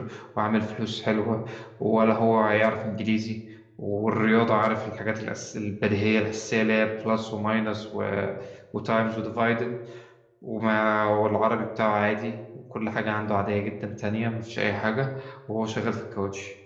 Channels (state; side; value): identical; both; correlation 1.00